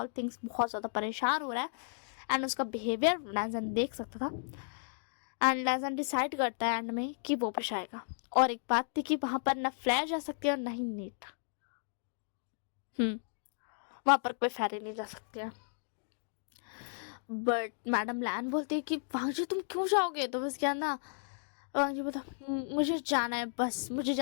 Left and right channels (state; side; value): silent; right; digital silence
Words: थिंग्स, बहुत ज़्यादा परेशान हो रहा है। एंड उसका बिहेवियर लैजन देख सकता था एंड लैजन डिसाइड करता है एंड में कि वो पेश आएगा। और एक बात थी कि वहाँ पर ना फ्लैश जा सकती है और ना ही नीट, वहाँ पर कोई फेरी नहीं जा सकती है। बट मैडम लैन बोलती है कि वांगजी तुम क्यों जाओगे। तो बस क्या ना वांगजी बोलता मुझे जाना है, बस मुझे